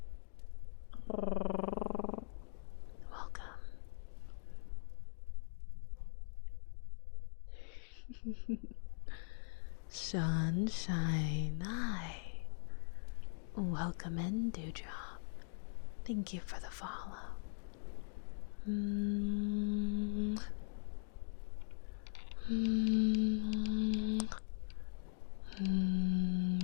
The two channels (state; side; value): silent; right; digital silence